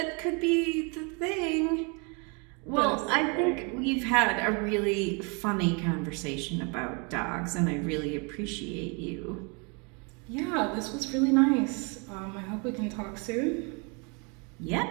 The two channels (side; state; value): left; quieter; 33.2 dB